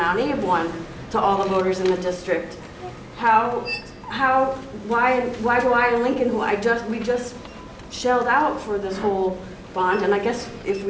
Abe one to all the voters in the district? Why do I in Lincoln, we just shelled out for this whole bond, and I guess if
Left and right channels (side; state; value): both; identical; correlation 1.00